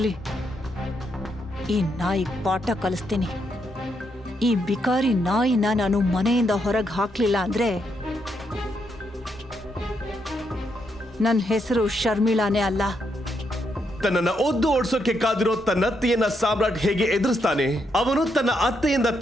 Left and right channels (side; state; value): both; normal; correlation 0.78